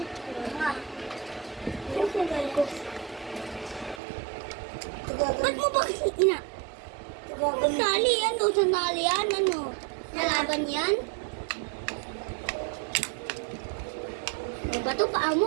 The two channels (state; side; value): drops out; left; at 4.0 s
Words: Ba't mo ba kasi ina? Sandali yan, sandali yan, ano? Nalaban yan? Ano ba ito? Paa